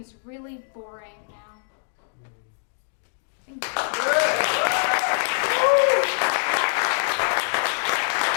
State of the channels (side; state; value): right; silent; digital silence